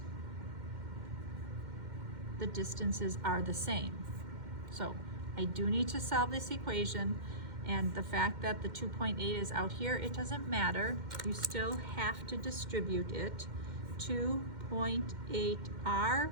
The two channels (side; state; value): left; late; 2.1 ms